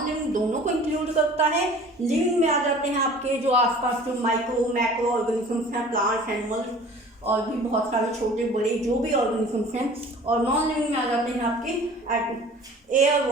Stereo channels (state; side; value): normal; both; correlation 0.46